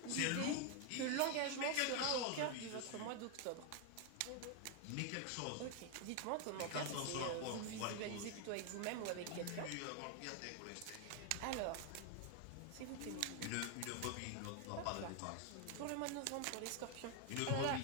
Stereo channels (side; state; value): both; different; correlation 0.01